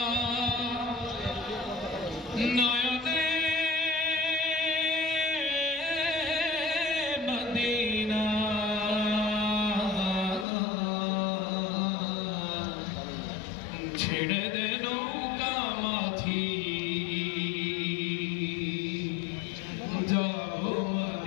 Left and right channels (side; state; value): right; drops out; at 10.5 s